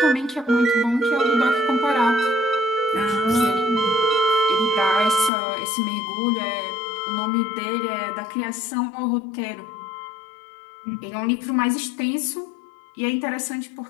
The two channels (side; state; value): right; drops out; at 5.3 s